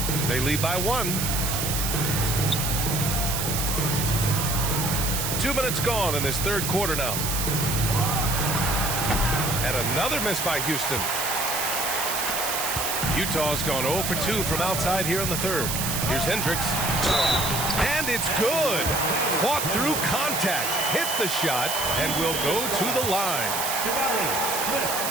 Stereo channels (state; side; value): noise; right; hiss, 1 dB below the sound